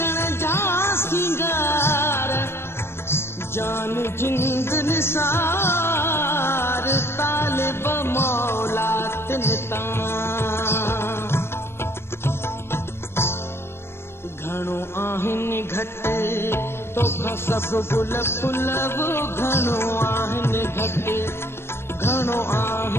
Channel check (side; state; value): right; late; 0.12 ms